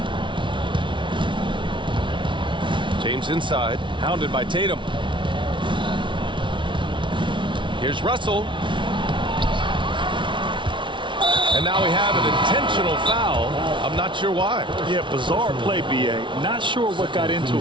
James inside, hounded by Tatum. Here's Russell. And now we have an intentional foul. I'm not sure why. Yeah, bizarre play, B.A. Not sure what got into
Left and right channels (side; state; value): left; late; 0.24 ms